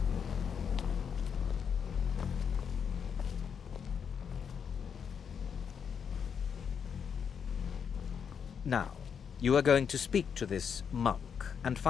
Now, you are going to speak to this monk and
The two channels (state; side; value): quieter; right; 7.1 dB